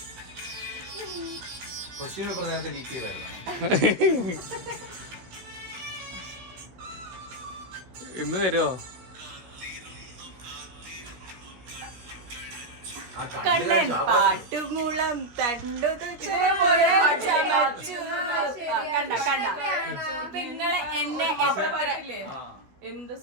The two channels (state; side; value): late; left; 16 ms